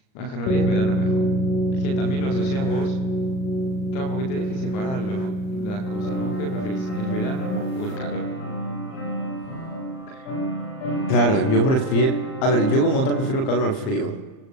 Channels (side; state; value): right; late; 38 ms